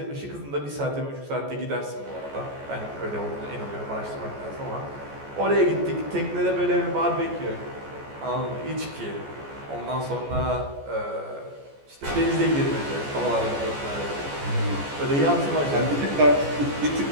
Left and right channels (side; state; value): left; late; 14 ms